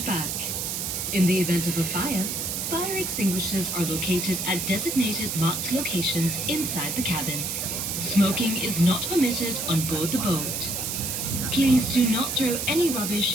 back. In the event of a fire extinguishers are located at designated marked locations inside the cabin. Smoking is not permitted on board the boat. Please do not throw any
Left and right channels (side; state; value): right; noise; hiss, 2 dB below the sound